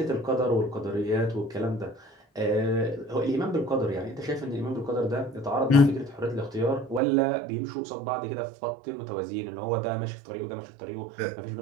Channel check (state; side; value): drops out; left; at 7.0 s